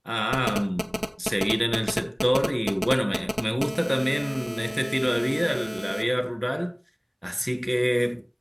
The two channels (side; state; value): both; identical; correlation 1.00